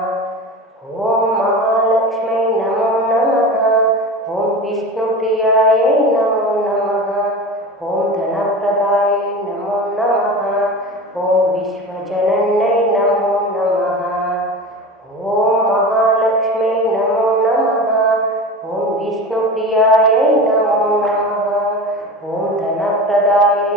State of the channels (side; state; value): both; normal; correlation 0.31